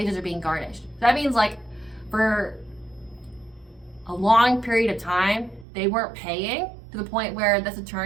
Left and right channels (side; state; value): left; drops out; at 5.7 s